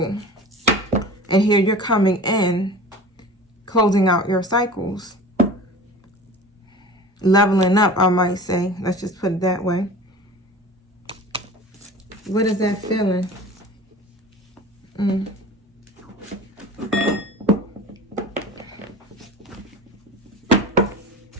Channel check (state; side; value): normal; both; correlation 0.38